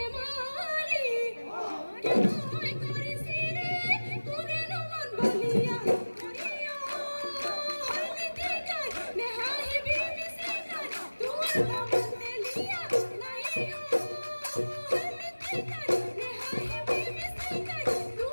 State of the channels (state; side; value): inverted; both; correlation -1.00